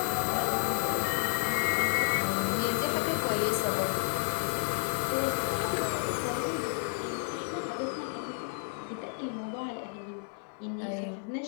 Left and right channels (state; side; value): silent; right; 57 dB below the other